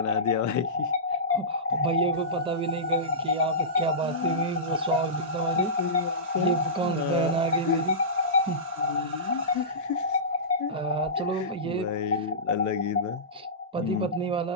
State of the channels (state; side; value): normal; both; correlation -0.19